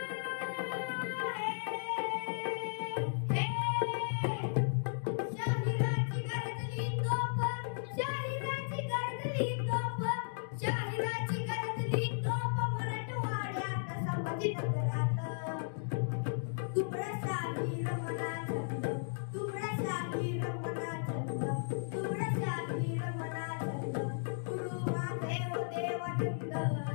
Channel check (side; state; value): right; silent; digital silence